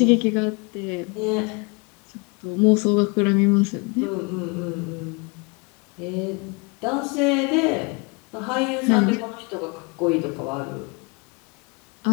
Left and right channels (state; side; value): quieter; right; 30.7 dB